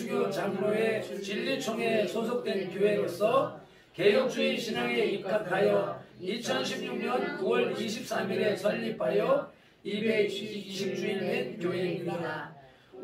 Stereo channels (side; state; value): both; identical; correlation 1.00